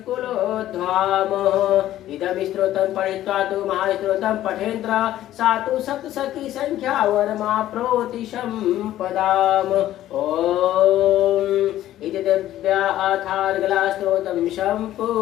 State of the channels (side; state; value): right; quieter; 13.4 dB